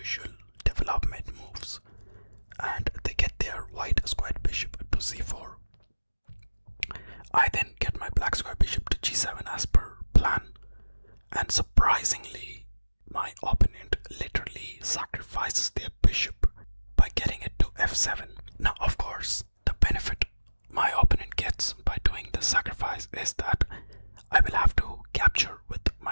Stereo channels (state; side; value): inverted; both; correlation -1.00